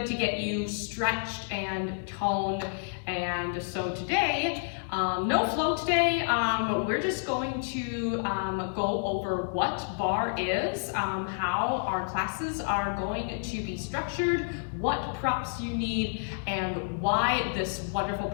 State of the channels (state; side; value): silent; right; digital silence